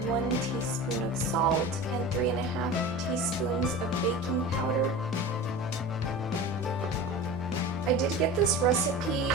1 teaspoon of salt and 3.5 teaspoons of baking powder. I did get this recipe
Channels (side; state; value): both; normal; correlation 0.33